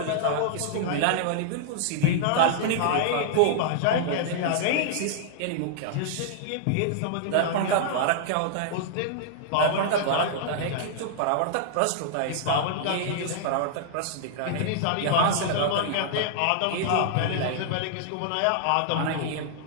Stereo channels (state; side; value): different; both; correlation -0.01